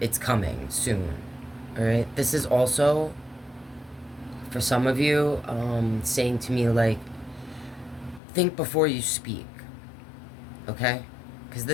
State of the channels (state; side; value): drops out; right; at 8.2 s